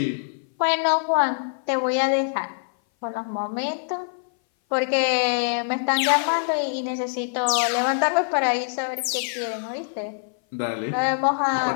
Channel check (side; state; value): right; silent; 59 dB below the other